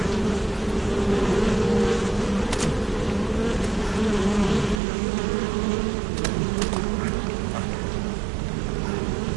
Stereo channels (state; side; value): drops out; left; at 4.8 s